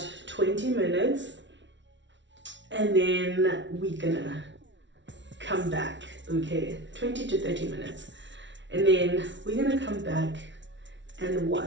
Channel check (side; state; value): left; late; 0.54 ms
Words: 20 minutes, and then we're gonna come back. Okay, 20 to 30 minutes, and then we're gonna come back and